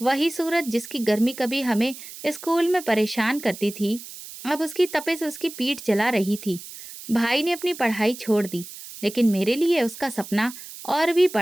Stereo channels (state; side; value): noise; right; hiss, 14 dB below the sound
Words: वही सूरज जिसकी गर्मी कभी हमें स्कूल में परेशान करती थी, अब उसकी तपिश उसकी पीठ जला रही थी। भाई ने अपनी पढ़ाई छोड़ दी, लेकिन मेरे लिए उसका सपना और भी